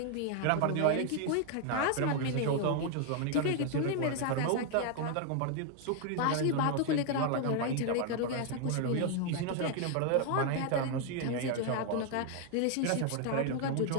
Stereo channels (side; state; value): both; different; correlation 0.00